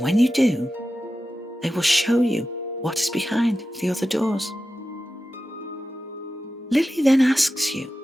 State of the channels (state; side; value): normal; both; correlation 0.92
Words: you do, they will show you what is behind the other doors. Lily then asks you,